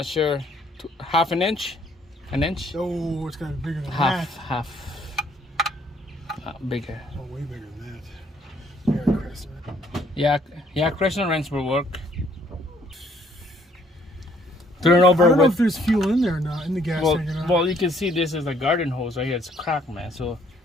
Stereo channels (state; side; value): normal; both; correlation 0.65